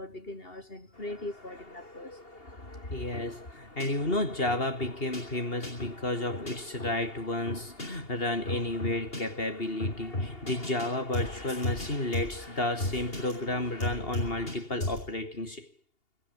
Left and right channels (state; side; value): late; right; 2.8 ms